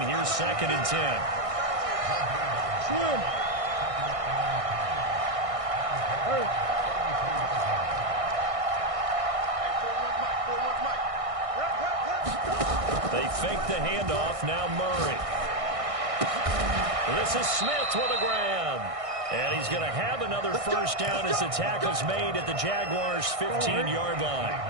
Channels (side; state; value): left; late; 1.6 ms